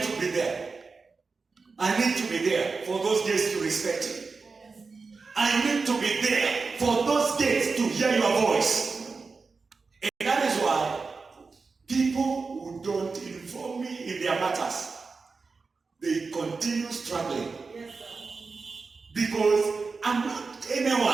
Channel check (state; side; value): quieter; left; 4.4 dB